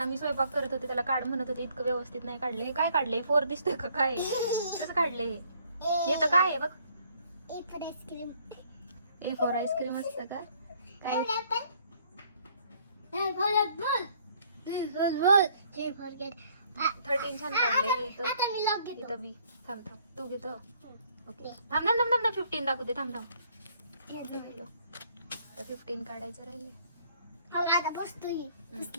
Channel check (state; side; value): inverted; both; correlation -0.63